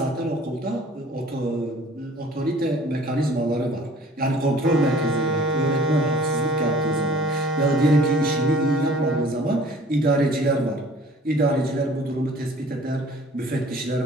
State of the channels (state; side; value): normal; both; correlation 0.51